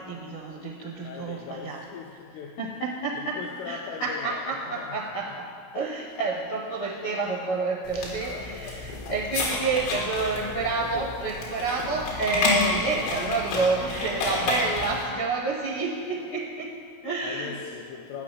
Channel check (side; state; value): right; late; 16 ms